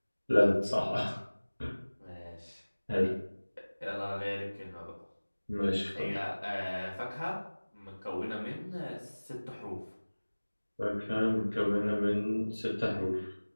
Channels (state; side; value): inverted; both; correlation -1.00